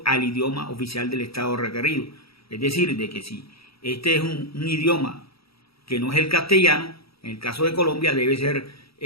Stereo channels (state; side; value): late; right; 0.76 ms